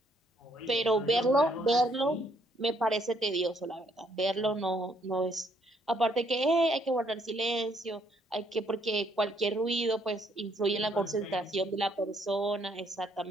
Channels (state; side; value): normal; both; correlation 0.69